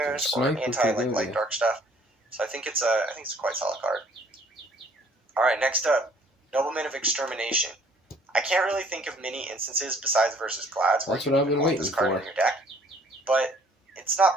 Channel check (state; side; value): normal; both; correlation 0.58